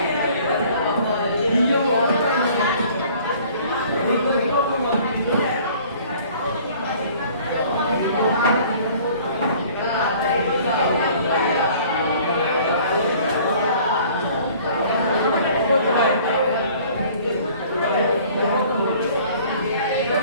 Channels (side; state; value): both; inverted; correlation -0.52